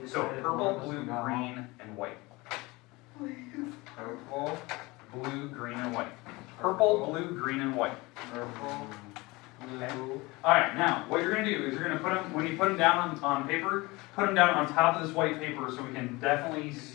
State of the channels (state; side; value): quieter; right; 22.9 dB